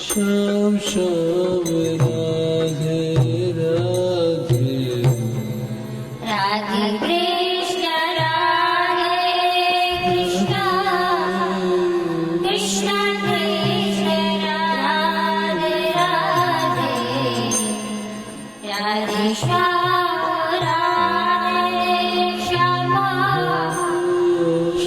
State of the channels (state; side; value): identical; both; correlation 1.00